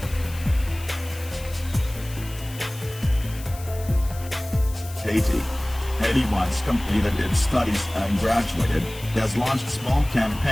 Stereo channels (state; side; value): noise; left; hiss, 17 dB below the sound